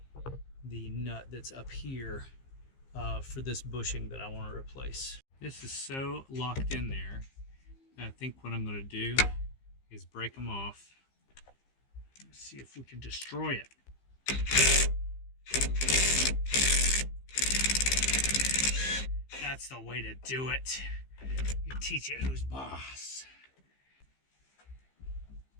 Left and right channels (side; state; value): right; late; 15 ms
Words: the nut that's up here for this bushing that I want to replace. This is so locked in there that I think what I'm going to do is break them off. Let's see if we can destroy it. That's the way to do it. You teach it who's boss.